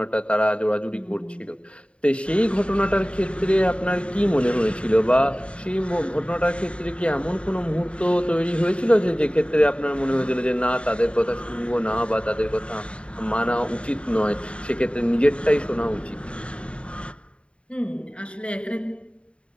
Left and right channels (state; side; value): late; right; 0.059 ms